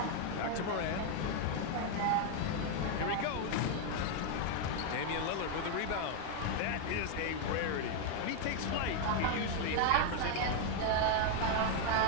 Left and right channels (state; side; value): different; both; correlation 0.01